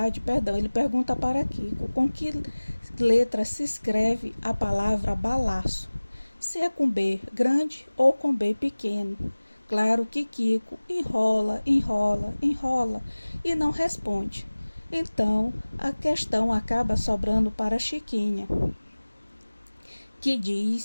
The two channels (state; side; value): inverted; both; correlation -1.00